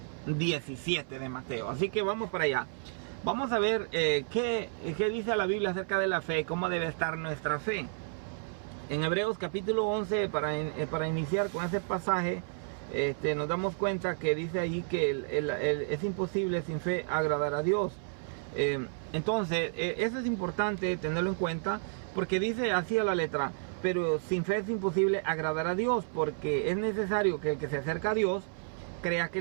17 de Mateo. Así que vamos para allá. Vamos a ver qué dice la Biblia acerca de la fe, cómo debe estar nuestra fe. En Hebreos capítulo 11, para iniciar con ese pasaje, nos damos cuenta que dice ahí que es imposible sin fe agradar a Dios. Entonces, eso es importante tenerlo en cuenta, porque dice así a la letra: pero sin fe es imposible agradar a Dios, porque es necesario que el que se acerca a Dios crea que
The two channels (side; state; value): left; silent; 57 dB below the other